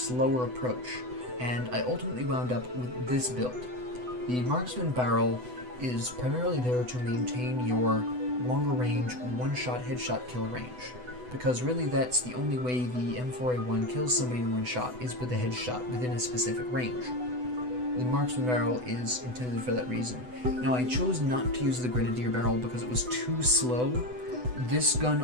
approach, and I ultimately wound up with this build. The Marksman barrel is primarily there to maintain your longer range one-shot headshot kill range, because really that's the only way the M4A1 kills somebody in one shot is with a headshot within a specific range. The Marksman barrel is intended for that reason. Now I chose not to use the Grenadier barrel because it was too slow. This gun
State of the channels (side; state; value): left; late; 8.0 ms